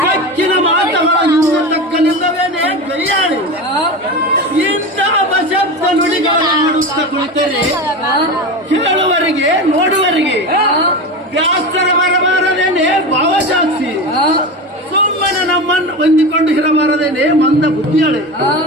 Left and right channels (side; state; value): both; normal; correlation 0.24